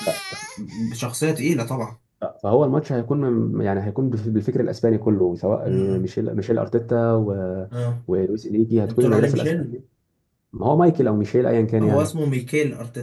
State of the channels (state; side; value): identical; both; correlation 1.00